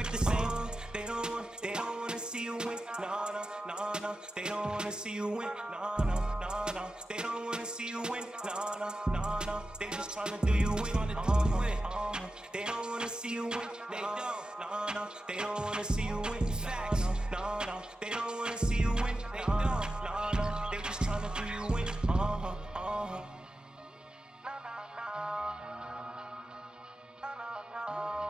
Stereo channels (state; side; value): normal; both; correlation 0.92